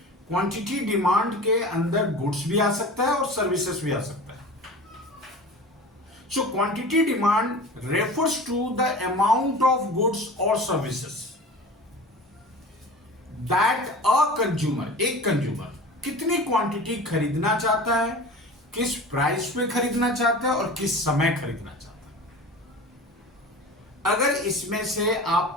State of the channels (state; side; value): normal; both; correlation 0.36